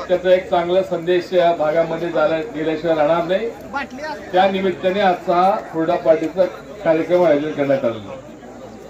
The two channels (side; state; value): both; identical; correlation 1.00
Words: त्याचा एक चांगला संदेश या भागामध्ये गेल्याशिवाय राहणार नाही। त्या निमित्ताने आजचा हुरडा पार्टीचा कार्यक्रम आयोजन करण्यात आलेला आहे।